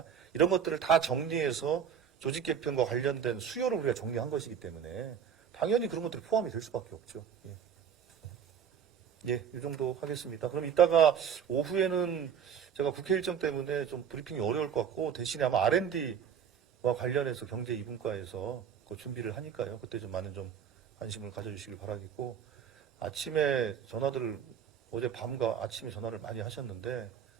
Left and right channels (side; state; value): left; quieter; 7.9 dB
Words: 이런 것들을 다 정리해서 조직 개편과 관련된 수요를 우리가 정리한 것이기 때문에 당연히 그런 것들이 포함이 될 수밖에 없죠. 예. 예, 이 정도 하겠습니다. 그럼 이따가 오후에는 제가 국회 일정 때문에 좀 브리핑이 어려울 것 같고, 대신에 아마 R&D와 관련해서 경제 2분과에서 그 준비를 하니까요. 그때 좀 많은 좀 관심을 가져주시길 바라겠고, 아침에 전화들을 어제 밤과 아침에 전화를 많이 하셨는데